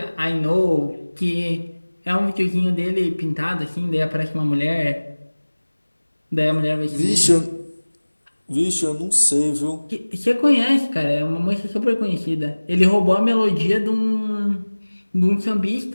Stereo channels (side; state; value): both; inverted; correlation -1.00